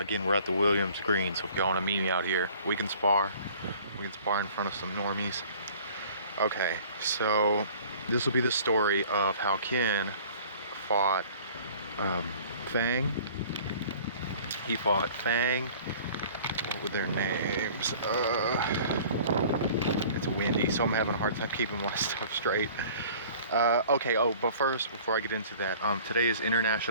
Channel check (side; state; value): both; inverted; correlation -0.49